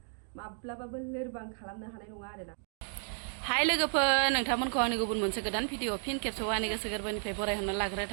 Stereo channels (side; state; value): left; silent; 56 dB below the other